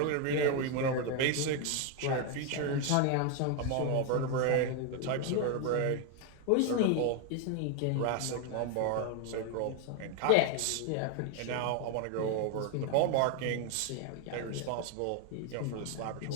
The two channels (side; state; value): both; different; correlation 0.01